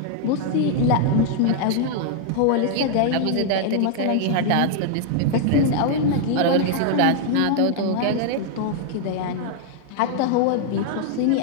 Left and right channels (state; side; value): different; both; correlation 0.00